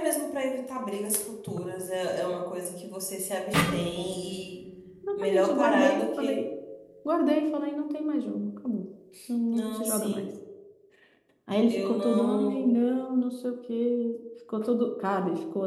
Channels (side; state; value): both; identical; correlation 1.00